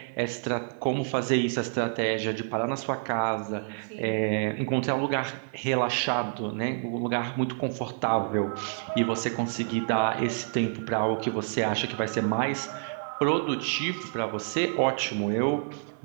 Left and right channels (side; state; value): left; silent; 59 dB below the other